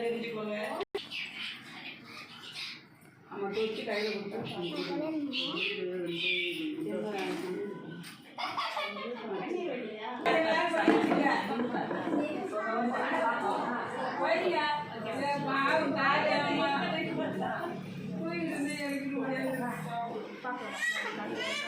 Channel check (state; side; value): identical; both; correlation 1.00